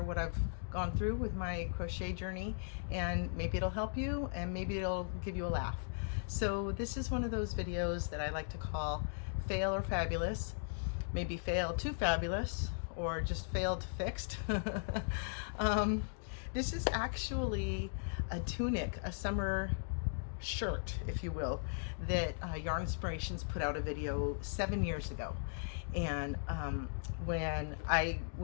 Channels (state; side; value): silent; right; digital silence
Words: I've gone through with my crochet journey, and maybe it'll help you and maybe it'll give you a laugh. So this is one of those videos that I like to call Fail or Fabulous. Maybe fail to fabulous or just fail to fixed. This is actually a tunic, a summer shirt, if you will, that Yarnspirations put out a video 7 years ago. And when I